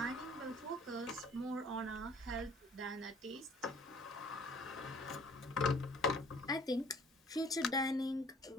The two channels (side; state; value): both; normal; correlation 0.54